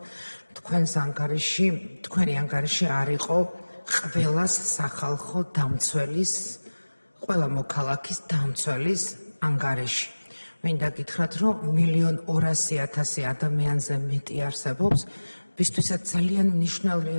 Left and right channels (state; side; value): inverted; both; correlation -1.00